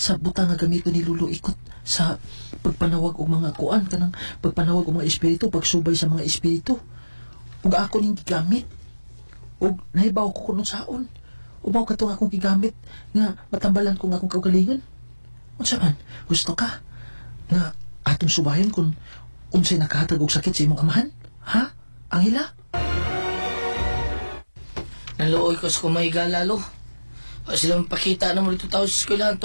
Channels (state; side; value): inverted; both; correlation -1.00